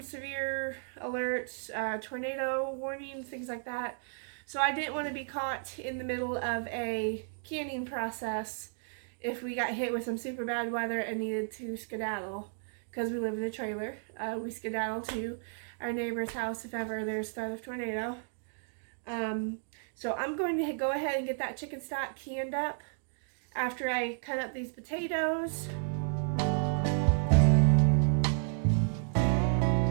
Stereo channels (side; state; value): left; silent; digital silence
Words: severe alerts, tornado warnings, things like that. So I didn't want to be caught in the middle of a canning process if we got hit with some super bad weather and needed to skedaddle. Because we live in a trailer, we skedaddle to our neighbor's house if ever there's threat of tornado. So I'm going to go ahead and get that chicken stock canned up after I cut up these potatoes.